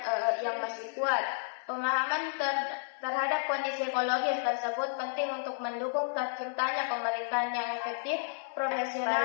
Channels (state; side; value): silent; right; 57 dB below the other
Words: yang masih kuat. Pemahaman terhadap kondisi ekologis tersebut penting untuk mendukung terciptanya pemerintahan yang efektif,